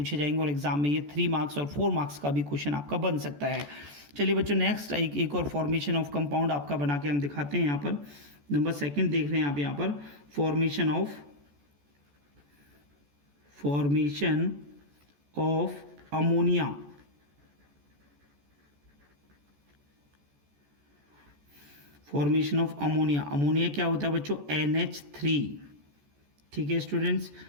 जाएंगे और एग्जाम में ये 3 मार्क्स और 4 मार्क्स का भी क्वेश्चन आपका बन सकता है। चलिए बच्चों, नेक्स्ट एक और फॉर्मेशन ऑफ कंपाउंड आपका बना के हम दिखाते हैं। यहाँ पर नंबर 2 देख रहे हैं आप, यहाँ पर formation of ammonia. Formation of ammonia. Ammonia क्या होता है बच्चों, NH3, ठीक है स्टूडेंट्स।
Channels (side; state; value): left; late; 14 ms